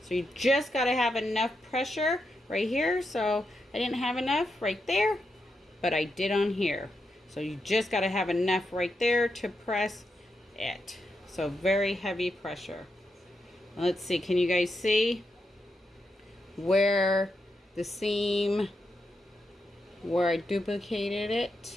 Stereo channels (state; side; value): normal; both; correlation 0.85